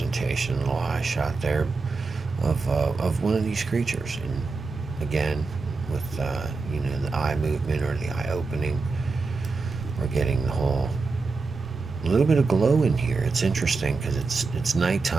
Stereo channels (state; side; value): quieter; left; 4.1 dB